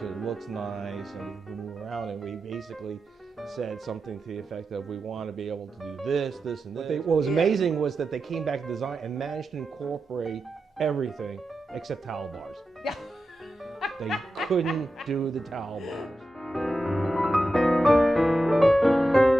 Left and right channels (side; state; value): both; normal; correlation 0.90